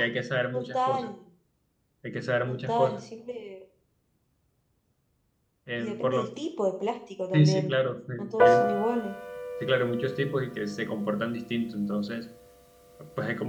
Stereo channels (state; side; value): identical; both; correlation 1.00